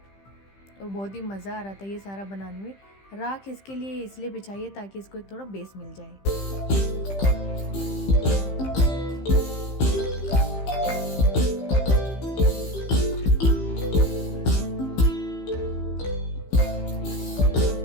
और बहुत ही मज़ा आ रहा था ये सारा बनाने में। राख इसके लिए इसलिए बिछाइए ताकि इसको एक थोड़ा बेस मिल जाए।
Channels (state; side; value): late; right; 15 ms